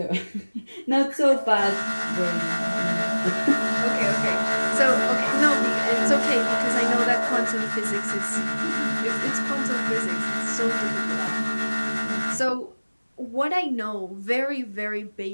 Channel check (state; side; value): inverted; both; correlation -1.00